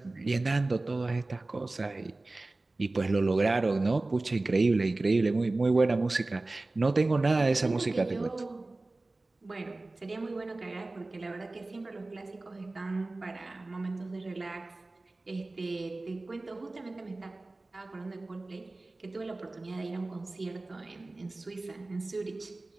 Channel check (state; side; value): quieter; left; 3.1 dB